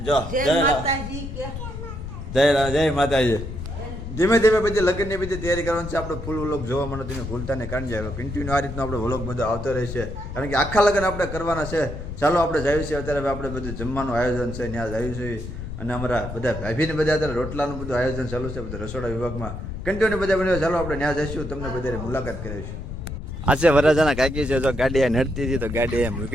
જો જય માતાજી. ધીમે ધીમે બધી લગ્નની બધી તૈયારી કરવાની છે. આપણે ફૂલ વ્લોગ જોવા મળે તમે ભૂલતા ને કાઢી જાય. કન્ટિન્યુ આ રીતનો આપણે વ્લોગ બધો આવતો રહેશે, કારણ કે આખા લગ્ન આપણે કરવાના છે. ચાલો આપણે જઈએ છીએ અત્યારે. આપણે બધું જમવાનું આયોજન છે ત્યાં જઈએ છીએ. અને અમારા બધા ભાભીને બધા અત્યારે રોટલાનું બધું આયોજન ચાલુ છે બધા રસોડા વિભાગમાં. કન્ટિન્યુ બધા બન્યો. ચાલો આપણે ત્યાં જઈશું, તમને બધાને મુલાકાત કરીશું. આ છે વરાજાના કાકી છે. જો ગાડી નડતી હતી તો ગાડી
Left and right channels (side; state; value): left; noise; rumble, 8 dB below the sound